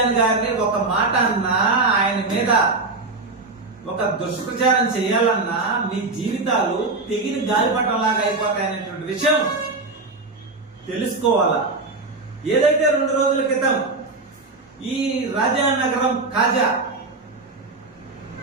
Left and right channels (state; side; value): quieter; left; 3.5 dB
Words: గారిని ఒక మాట అన్నా, ఆయన మీద ఒక దుష్ప్రచారం చేయాలన్నా మీ జీవితాలు తెగిన గాలిపటంలాగా అయిపోతాయనేటువంటి విషయం తెలుసుకోవాలా. ఏదైతే 2 రోజుల క్రితం ఈ రాజానగరం